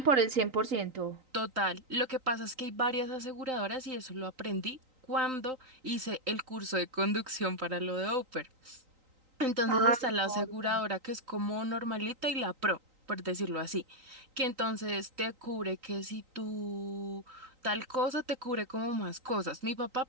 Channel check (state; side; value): late; left; 3.9 ms